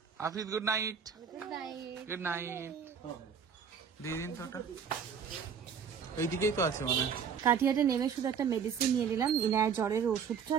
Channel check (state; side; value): quieter; left; 7.0 dB